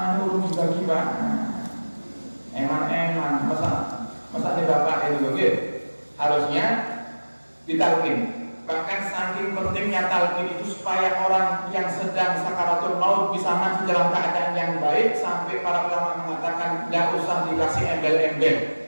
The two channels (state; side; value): inverted; both; correlation -1.00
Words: urung juga eman, masa nih bapak itu, harusnya ditalkin. Bahkan saking pentingnya talkin itu supaya orang yang sedang sakaratul maut bisa mati dalam keadaan yang baik, sampai para ulama mengatakan tidak usah dikasih embel-embel.